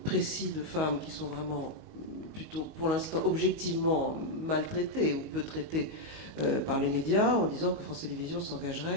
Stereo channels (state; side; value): late; left; 19 ms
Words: précis de femmes qui sont vraiment plutôt, pour l'instant, objectivement maltraitées ou peu traitées par les médias, en disant que France Télévisions